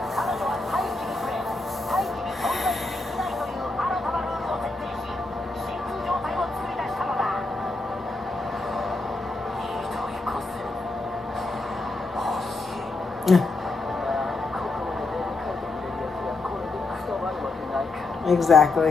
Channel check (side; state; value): right; quieter; 3.2 dB